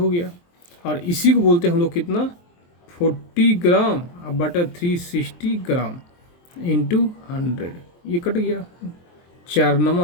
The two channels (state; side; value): late; right; 23 ms